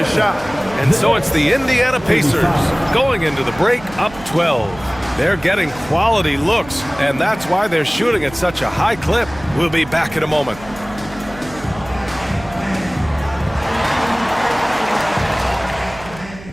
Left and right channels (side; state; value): right; noise; hum, 18 dB below the sound